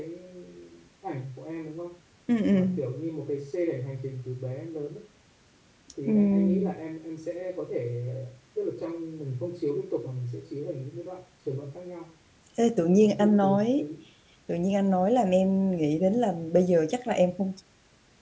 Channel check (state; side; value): identical; both; correlation 1.00